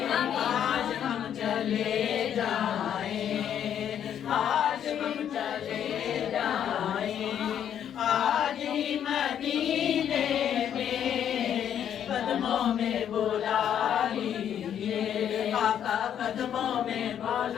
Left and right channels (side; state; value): right; quieter; 9.5 dB